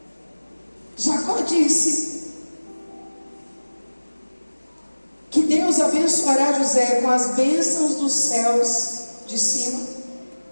Jacó disse que Deus abençoará José com as bênçãos dos céus de cima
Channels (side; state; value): both; inverted; correlation -1.00